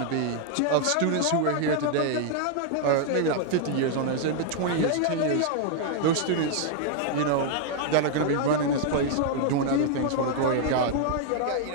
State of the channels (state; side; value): different; both; correlation 0.00